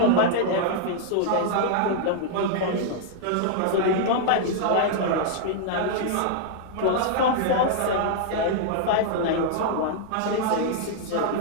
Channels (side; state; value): both; different; correlation -0.01